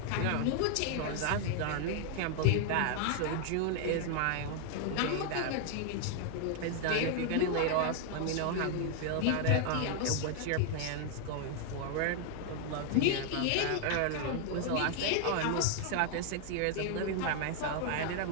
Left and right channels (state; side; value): different; both; correlation 0.00